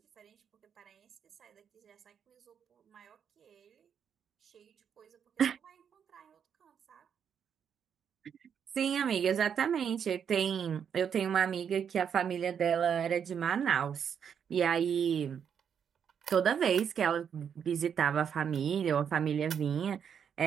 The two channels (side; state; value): left; quieter; 7.7 dB